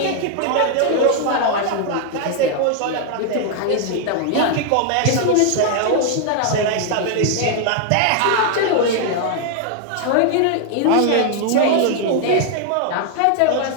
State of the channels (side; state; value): both; different; correlation 0.00